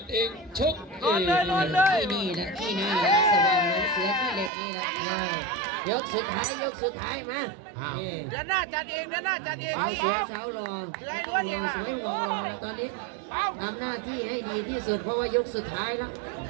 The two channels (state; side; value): drops out; left; at 4.5 s